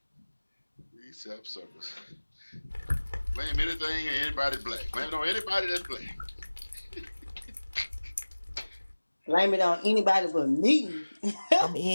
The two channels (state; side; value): inverted; both; correlation -1.00